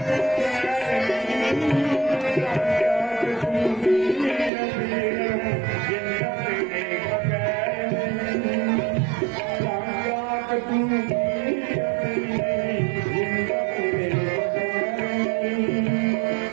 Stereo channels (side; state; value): left; drops out; at 4.5 s